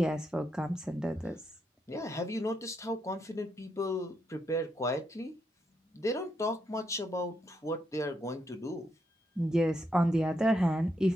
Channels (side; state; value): both; normal; correlation 0.80